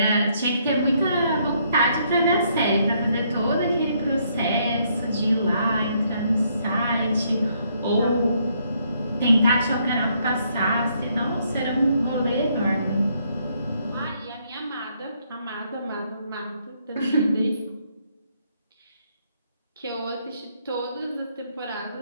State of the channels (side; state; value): both; inverted; correlation -0.71